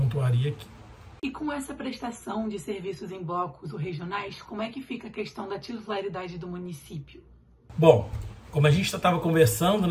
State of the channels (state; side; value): identical; both; correlation 1.00